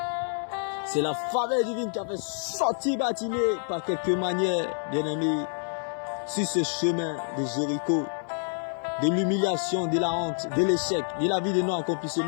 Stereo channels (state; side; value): silent; right; 60 dB below the other